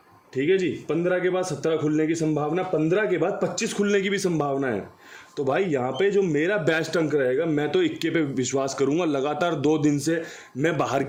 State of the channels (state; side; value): identical; both; correlation 1.00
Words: ठीक है जी। 15 के बाद 17 खुलने की संभावना, 15 के बाद 25 खुलने की भी संभावना है। तो भाई यहाँ पे जो मेरा बेस्ट अंक रहेगा, मैं तो 21 पे विश्वास करूँगा। लगातार 2 दिन से मैं बाहर